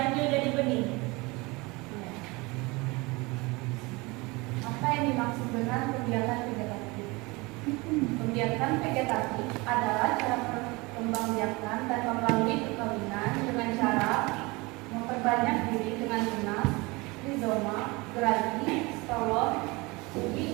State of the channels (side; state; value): left; quieter; 24.7 dB